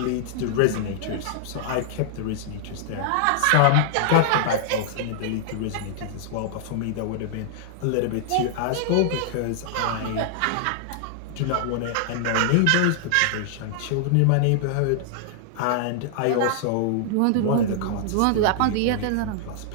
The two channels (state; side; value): different; both; correlation -0.01